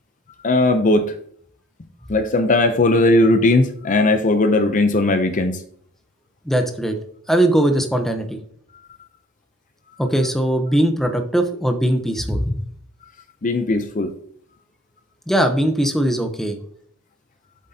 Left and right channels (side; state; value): both; normal; correlation 0.59